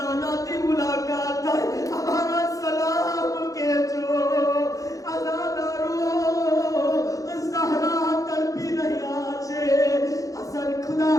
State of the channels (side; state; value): right; late; 0.17 ms